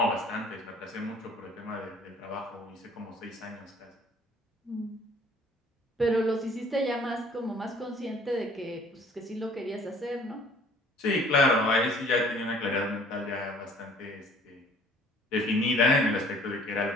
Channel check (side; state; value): both; normal; correlation 0.53